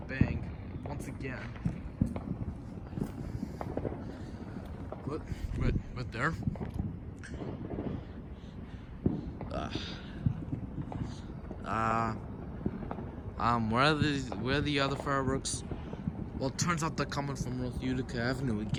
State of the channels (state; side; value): identical; both; correlation 1.00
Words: bang. Once again. What? Right there. Where are the other fireworks? Well, it turns out they're coming from North Utica Avenue